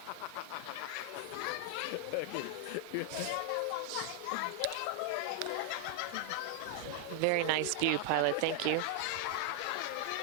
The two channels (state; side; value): different; both; correlation 0.00